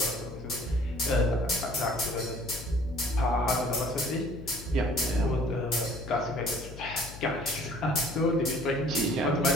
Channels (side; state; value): left; noise; hum, 13 dB below the sound